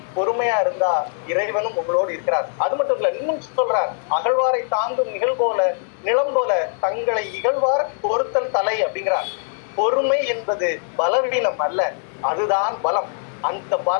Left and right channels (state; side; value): silent; right; digital silence